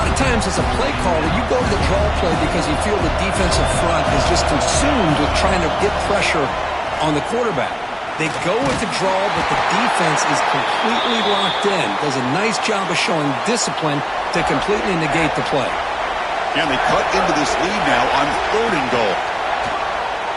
of times as a play caller, you go to the draw play because you feel the defensive front is just consumed with trying to get pressure on the quarterback. They go with the draw, but the defense is completely locked in. Does a nice job of showing discipline to completely negate the play. And they cut into this lead now on 3rd and goal.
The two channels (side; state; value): both; identical; correlation 1.00